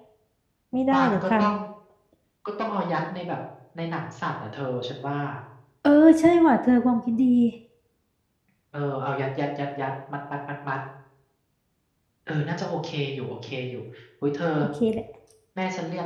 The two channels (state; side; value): identical; both; correlation 1.00